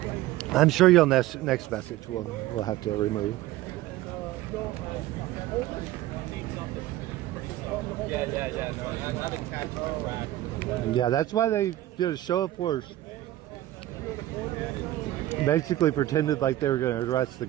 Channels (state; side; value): quieter; left; 15.0 dB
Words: I'm sure you'll next message we'll have to remove. Yeah, that's why they did a show of force. Basically pretended like they were going to arrest the